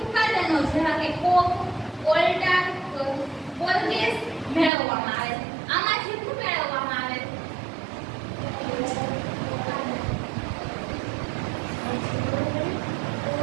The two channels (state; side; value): drops out; left; at 4.7 s